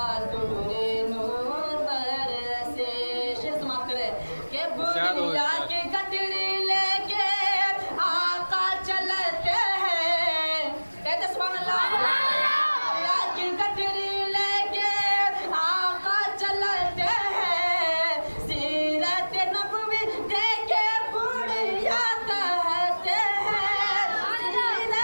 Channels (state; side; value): inverted; both; correlation -1.00